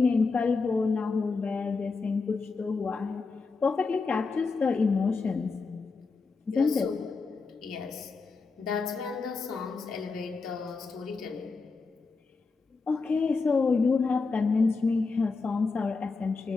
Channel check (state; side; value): quieter; right; 4.3 dB